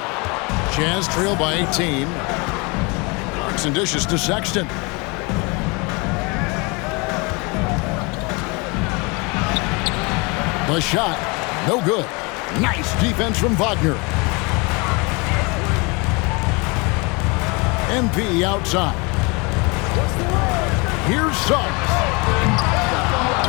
Jazz trail by 18. Clarkson dishes to Sexton. The shot, no good. Nice defense from Wagner. MP outside. Here's Suggs.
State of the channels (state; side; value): quieter; right; 28.8 dB